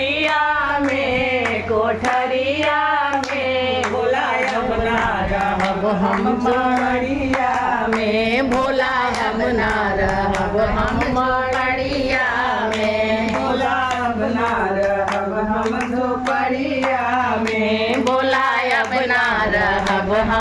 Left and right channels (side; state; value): both; identical; correlation 1.00